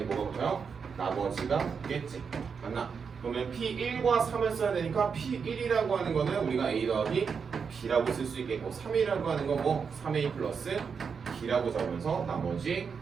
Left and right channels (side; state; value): left; quieter; 6.0 dB